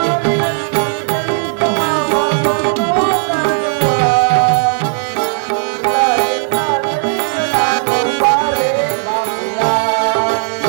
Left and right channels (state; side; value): silent; left; digital silence